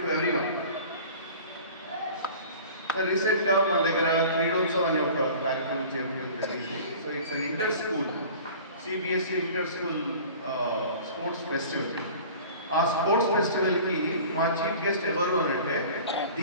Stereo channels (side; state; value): both; inverted; correlation -0.42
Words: to everyone. So recently మన దగ్గర క్రీడోత్సవం అనే ఒక కార్యక్రమం చేపట్టడం జరిగింది. So it's an inter school CBSE inter school sports festival. ఆ స్పోర్ట్స్ ఫెస్టివల్కి మా చీఫ్ గెస్ట్ ఎవరు అని అంటే